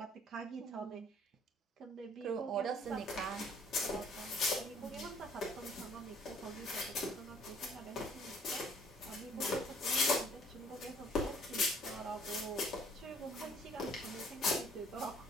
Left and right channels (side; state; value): both; normal; correlation 0.59